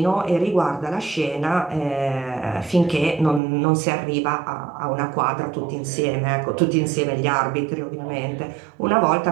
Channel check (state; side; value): drops out; left; at 3.4 s